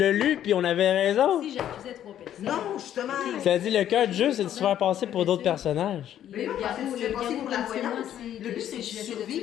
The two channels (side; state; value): right; quieter; 10.9 dB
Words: lu, puis on avait raison. si j'accusais 3 personnes. Non, justement. Ça a dit le cœur du jeu, c'est de se faire passer pour d'autres personnages. Mais non, parce que tu te fais passer pour la voyante. Le but, c'est de